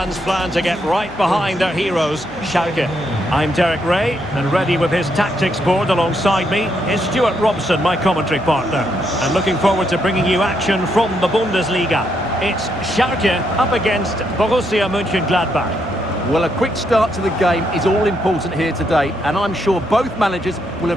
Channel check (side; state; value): left; noise; hum, 24 dB below the sound